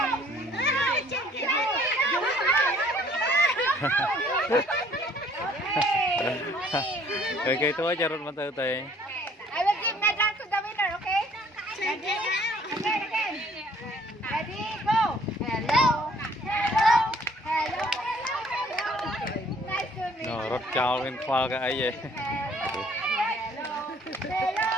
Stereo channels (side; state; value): both; normal; correlation 0.59